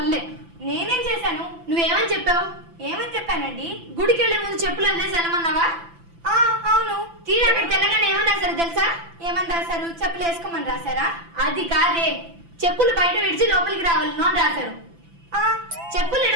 నేనేం చేశాను? నువ్వేమని చెప్పావు? ఏమని చెప్పానండి? గుడికి వెళ్లే ముందు చెప్పులు వదిలేసి వెళ్ళమన్నావా? అవును. తీరా అక్కడికి వెళ్ళగానే ఏమని రాశారు తెలుసా? ఏమని రాశారు? చెప్పులు వేసుకోమని రాశారా? అది కాదే, చెప్పులు బయట విడిచి లోపలికి రావాలి అని రాశారు. చెప్పులు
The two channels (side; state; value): left; late; 5.9 ms